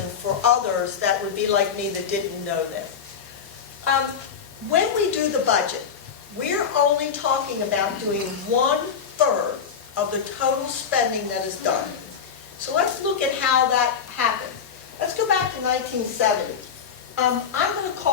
for others that would be like me that didn't know this. When we do the budget, we're only talking about doing 1/3 of the total spending that is done. So let's look at how that happened. Let's go back to 1970. I'm going to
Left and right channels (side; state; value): right; quieter; 6.9 dB